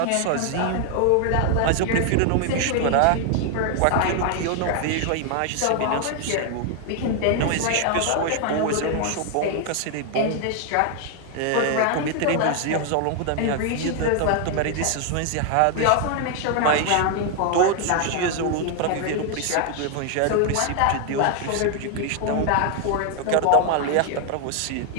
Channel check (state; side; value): different; both; correlation 0.00